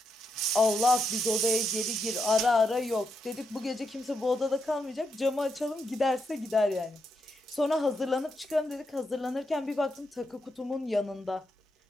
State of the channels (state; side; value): normal; both; correlation 0.82